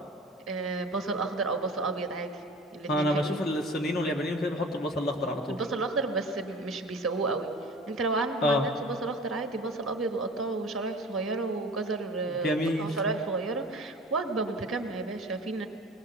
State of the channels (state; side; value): normal; both; correlation 0.40